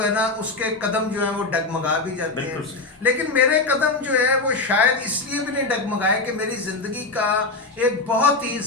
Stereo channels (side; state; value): right; quieter; 3.5 dB